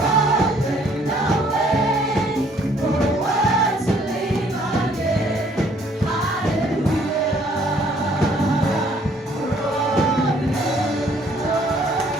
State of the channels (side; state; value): both; normal; correlation 0.62